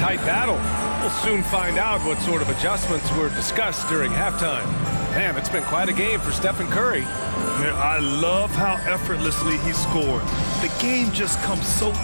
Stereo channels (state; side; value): inverted; both; correlation -1.00